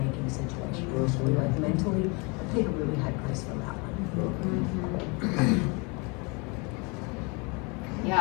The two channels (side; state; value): right; quieter; 30.3 dB